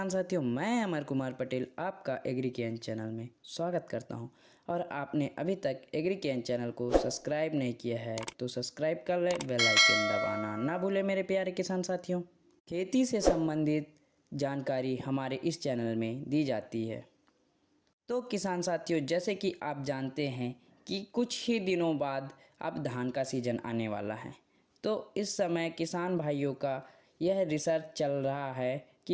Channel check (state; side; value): identical; both; correlation 1.00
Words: साथियों, मैं अमर कुमार पटेल आपका एग्रीकेन चैनल में स्वागत करता हूं। और आपने अभी तक एग्रीकेन चैनल को सब्सक्राइब नहीं किया है तो सब्सक्राइब कर ले, बेल आइकन दबाना ना भूले मेरे प्यारे किसान साथियों। खेती से संबंधित जानकारी हमारे इस चैनल में दी जाती है। तो किसान साथियों, जैसे कि आप जानते हैं कि कुछ ही दिनों बाद अब धान का सीज़न आने वाला है। तो इस समय किसान भाइयों का यह रिसर्च चल रहा है